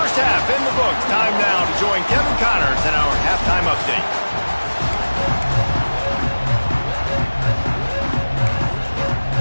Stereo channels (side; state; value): both; inverted; correlation -1.00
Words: half in the books. Time now to join Kevin Connors in our halftime update.